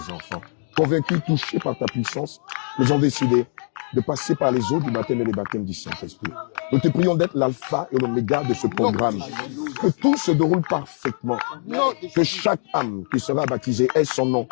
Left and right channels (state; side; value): silent; right; 64 dB below the other